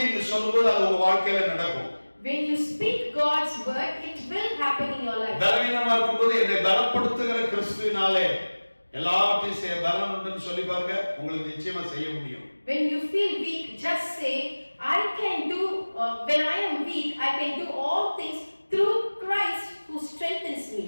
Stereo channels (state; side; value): inverted; both; correlation -1.00